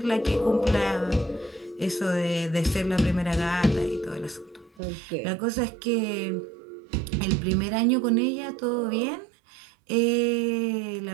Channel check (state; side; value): drops out; left; at 4.8 s